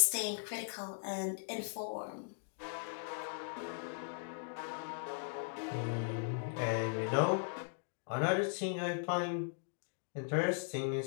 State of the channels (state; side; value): silent; right; digital silence